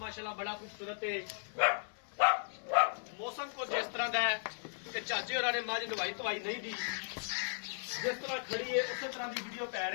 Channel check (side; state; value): right; silent; 54 dB below the other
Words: बड़ा खूबसूरत है। मौसम को जिस तरह का है कि चाचे होरां ने मझ नवाई धवाई नहीं दी, जिस तरह खड़ी है उस तरह की वीडियो पै